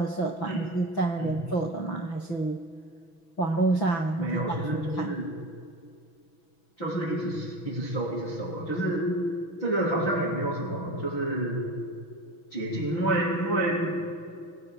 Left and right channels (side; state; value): right; late; 6.1 ms